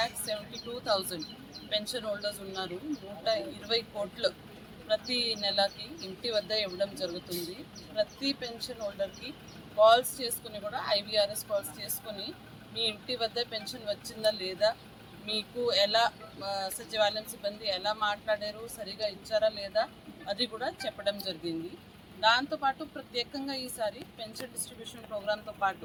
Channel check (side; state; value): both; identical; correlation 1.00